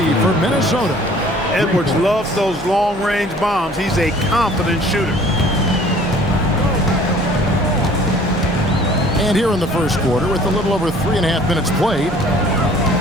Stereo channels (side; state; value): both; normal; correlation 0.53